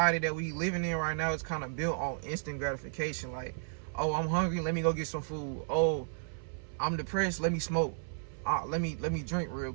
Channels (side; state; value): left; silent; 56 dB below the other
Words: that we living in right now is kind of built on instant gratification. Like, oh, I'm hungry, let me go get some food. Oh, I'm depressed, let me smoke. Let me drink real